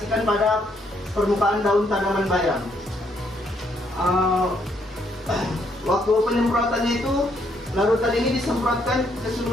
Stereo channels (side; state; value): both; normal; correlation 0.72